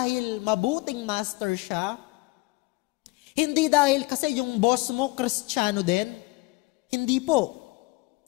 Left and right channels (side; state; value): right; quieter; 23.8 dB